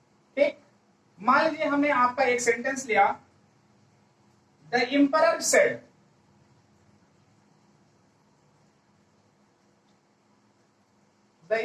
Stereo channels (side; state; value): both; identical; correlation 1.00